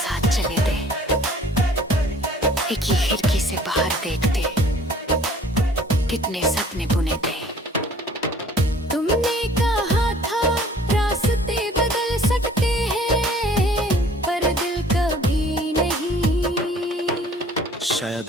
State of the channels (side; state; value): both; normal; correlation 0.52